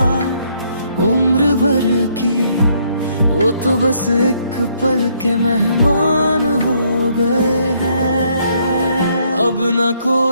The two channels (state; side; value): inverted; both; correlation -0.70